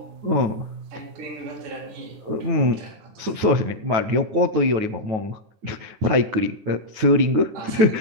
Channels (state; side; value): late; left; 9.3 ms